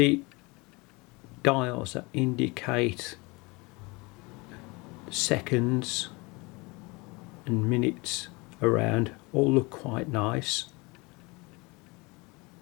dials that indicate seconds and minutes around all look quite nice.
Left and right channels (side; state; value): right; quieter; 26.0 dB